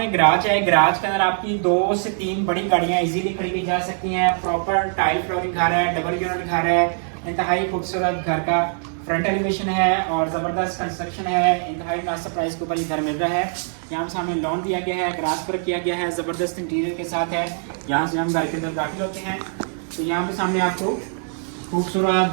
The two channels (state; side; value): silent; left; digital silence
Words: गराज है। गराज के अंदर आपकी 2 से 3 बड़ी गाड़ियाँ इजीली खड़ी की जा सकती हैं। प्रॉपर टाइल फ्लोरिंग घर है, डबल यूनिट घर है, इंतहाई खूबसूरत घर का फ्रंट एलिवेशन है और ज़बरदस्त कंस्ट्रक्शन है। इंतहाई मुनासिब प्राइस के ऊपर ये घर मिल रहा है। यहाँ सामने लॉन दिया गया है, ग्रास पर किया गया है, ज़बरदस्त इंटीरियर के साथ है। यहाँ से हम घर के अंदर दाखिल होते हैं तो यहाँ पे सामने आपको खूबसूरत